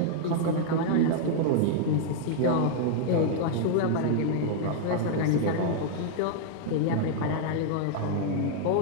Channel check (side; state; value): both; different; correlation -0.01